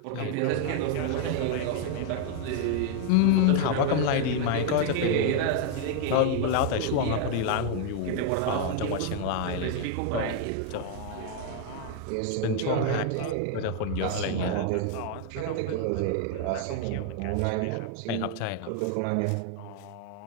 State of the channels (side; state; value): both; different; correlation 0.00